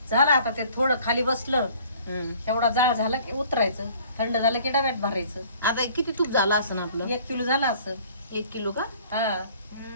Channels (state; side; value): inverted; both; correlation -0.53